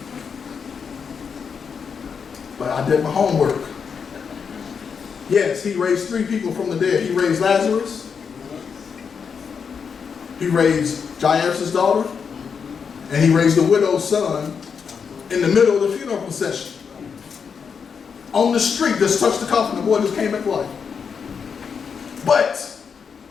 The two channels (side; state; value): right; quieter; 6.3 dB